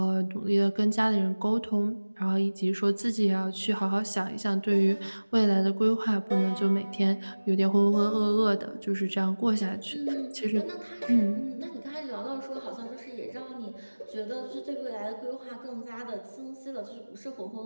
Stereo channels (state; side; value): inverted; both; correlation -1.00